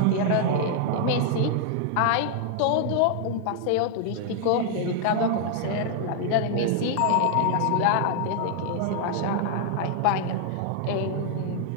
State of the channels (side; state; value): both; different; correlation 0.00